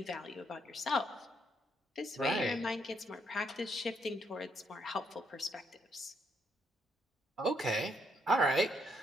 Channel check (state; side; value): normal; both; correlation 0.73